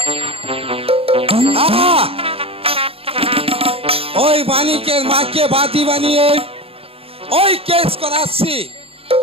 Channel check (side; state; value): left; late; 0.28 ms